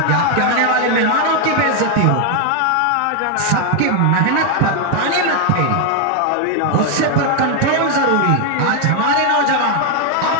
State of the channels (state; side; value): different; both; correlation 0.01